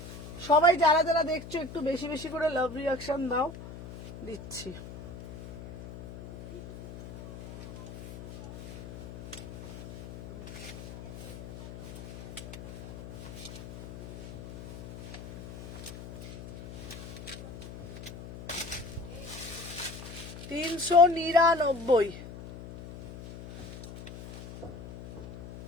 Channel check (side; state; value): left; noise; hum, 14 dB below the sound